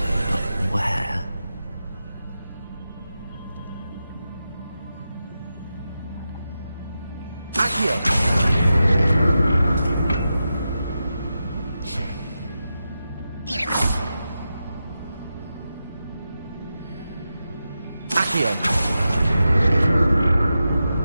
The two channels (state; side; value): inverted; both; correlation -0.90